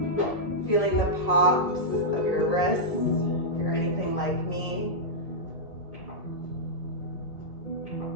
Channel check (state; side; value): late; right; 1.7 ms